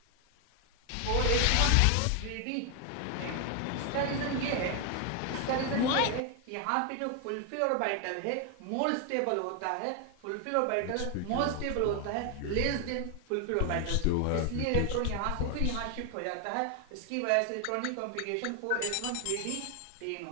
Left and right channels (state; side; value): different; both; correlation 0.01